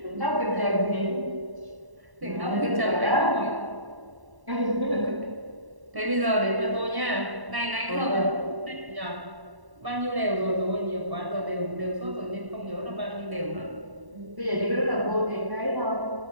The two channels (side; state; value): left; late; 1.1 ms